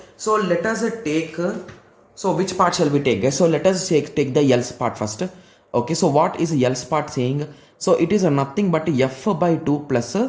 so let us take, so which part shall we take? So let us take the else part first. Okay, so what is else part saying? So it is nothing but f by 2 plus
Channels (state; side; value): identical; both; correlation 1.00